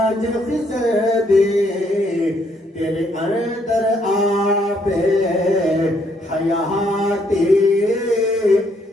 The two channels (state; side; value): normal; both; correlation 0.70